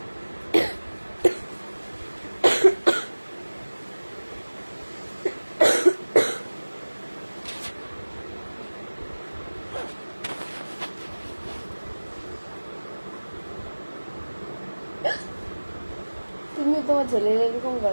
তুমি তোমার ছেলের এরকম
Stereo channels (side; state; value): both; inverted; correlation -1.00